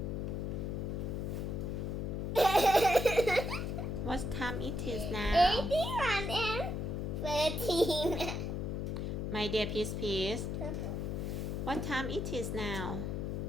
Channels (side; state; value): left; noise; hum, 2 dB below the sound